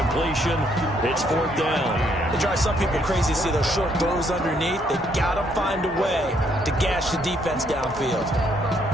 It's 4th down. It drives some people crazy to see those short throws underneath. They got to find a way to gash the defense downfield.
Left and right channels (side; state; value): both; normal; correlation 0.70